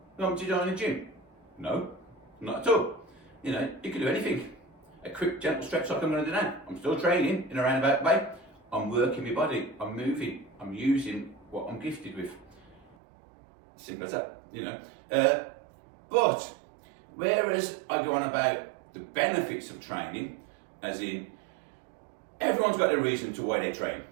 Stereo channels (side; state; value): left; drops out; at 13.0 s